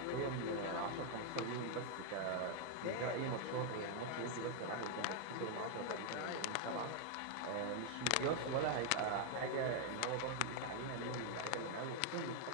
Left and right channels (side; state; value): both; different; correlation 0.00